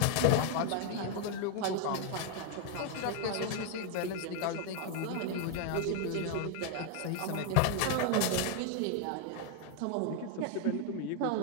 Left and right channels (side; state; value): both; different; correlation 0.00